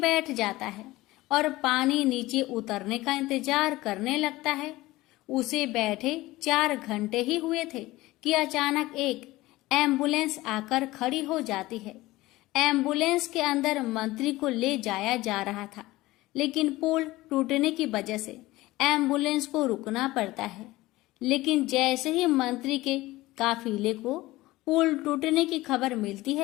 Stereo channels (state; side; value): quieter; right; 18.6 dB